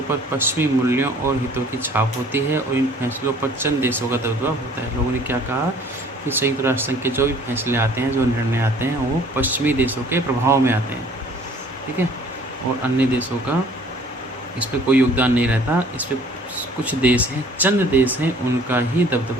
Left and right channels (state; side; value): normal; both; correlation 0.53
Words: पर पश्चिमी मूल्यों और हितों की छाप होती है और इन फैसलों पर चंद देशों का दबदबा होता है। लोगों ने क्या कहा कि संयुक्त राष्ट्र संघ के जो भी फैसले आते हैं, जो निर्णय आते हैं, वो पश्चिमी देशों के प्रभाव में आते हैं, ठीक है, और अन्य देशों का इस पर कोई योगदान नहीं रहता। इस पर कुछ देश हैं, चंद देश हैं, उनका ही